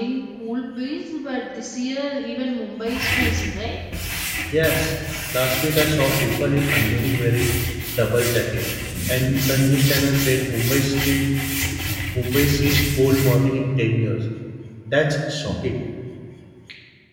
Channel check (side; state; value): both; identical; correlation 1.00